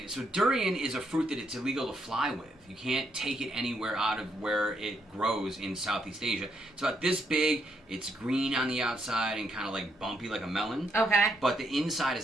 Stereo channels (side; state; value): both; normal; correlation 0.76